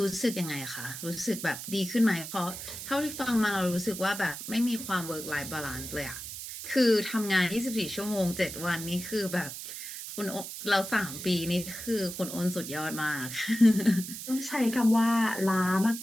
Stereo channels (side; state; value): right; noise; hiss, 9 dB below the sound